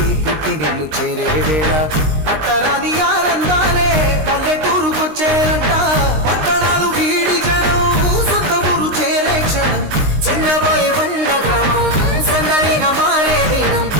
పుట్టి నిన్ను చేరే వేళ అట్టరాని ఆనందాలే పల్లెటూరుకొచ్చేనంట పట్టణాలు వీడి జనం సొంత ఊరు చేరే క్షణం చిన్నబోయి బండ గ్రామం సందడిగా మారే దినం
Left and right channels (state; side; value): late; left; 19 ms